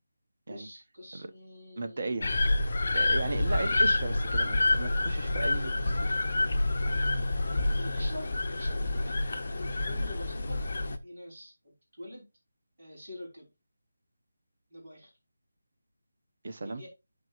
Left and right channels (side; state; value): both; inverted; correlation -0.95